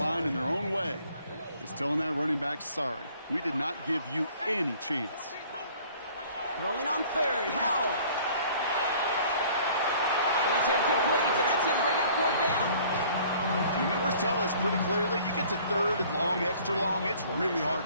in their own way is telling that running back, sorry, we did not give you any chance. Throwing on 3rd, Howell. And it's incomplete, and that's going to bring up 4th down. The numbers tell us pretty clearly, you get to 3rd and long, extra long, it's really hard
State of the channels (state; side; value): inverted; both; correlation -0.54